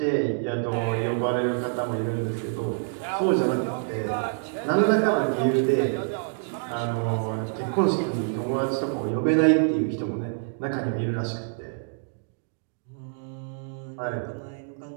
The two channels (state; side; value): silent; left; digital silence